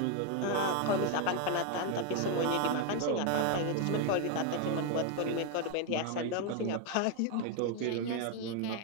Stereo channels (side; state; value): both; different; correlation 0.01